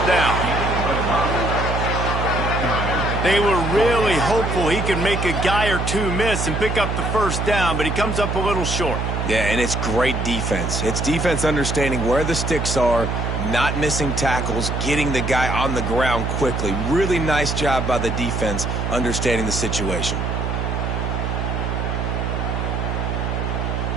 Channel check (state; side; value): noise; right; hum, 1 dB below the sound